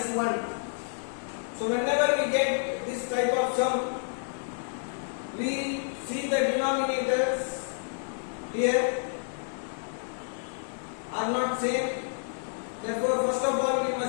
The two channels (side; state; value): right; silent; digital silence